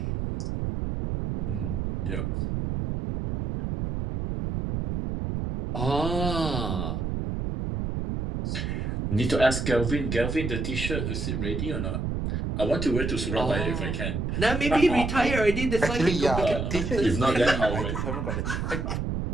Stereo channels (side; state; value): right; noise; rumble, 2 dB below the sound